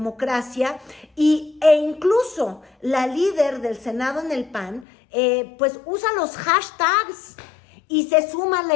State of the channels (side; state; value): right; drops out; at 4.9 s